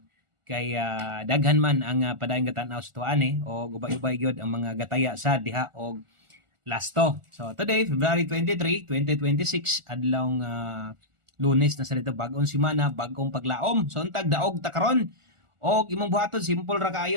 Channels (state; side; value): late; left; 1.4 ms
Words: Kay daghan man ang padayong gatanaw sa tuan o ubay-ubay gyud ang mga gataya sa diha og lasto. So today, February 23, 2026, adlawng Lunes na sa dito, bagong semana, bagong paglaom. So untag daog ta karon. Og imong buhaton simple ra